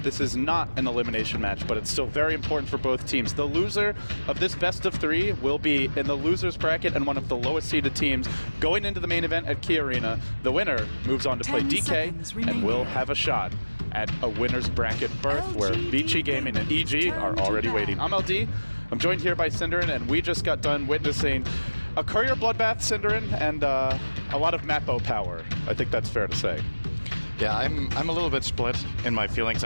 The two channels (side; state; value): both; inverted; correlation -1.00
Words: This is not an elimination match, but it's still very important for both teams. The loser of this best of 3 will be in the loser's bracket and one of the lowest seeded teams going into the main event at Key Arena. The winner moves on to play DK and will have a shot at a winner's bracket berth where Vici Gaming and EG are already waiting. I'm LD. I'm joined here by Cinderin, and we just got done witnessing a courier bloodbath, Cinderin, and a lot of Mappo power. I think that's fair to say. Yeah, I'm a little bit split in my feelings